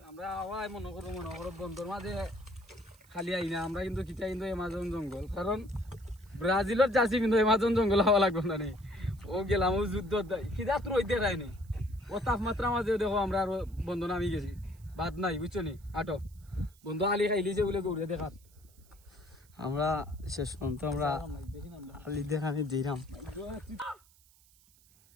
মনে করো বন্ধুর মাঝে খালি আই না আমরা কিন্তু কিটা কিন্তু এমাজন জঙ্গল কারণ ব্রাজিলের জার্সি কিন্তু এমাজন জঙ্গল হওয়া লাগবে না রে ও গেলাম ও যুদ্ধ কিটা তোর ওইতে রায়নি ও তাপমাত্রা মাঝে দেখো আমরা আর বন্ধু নামি গেছি বাদ নাই বুঝছো নি আটো বন্ধু আলি খাইলিছে বলে গৌরে দেখাত আমরা শেষ পর্যন্ত আমরা আলি দেখানি দিলাম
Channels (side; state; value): right; noise; hiss, 29 dB below the sound